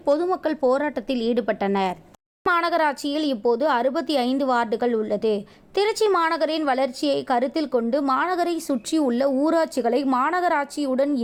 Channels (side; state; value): both; identical; correlation 1.00